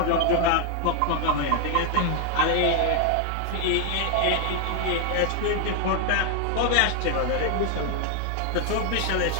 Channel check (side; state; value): both; different; correlation 0.00